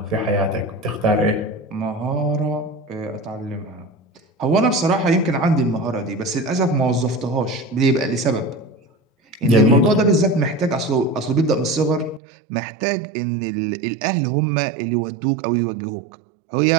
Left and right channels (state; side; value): drops out; left; at 12.2 s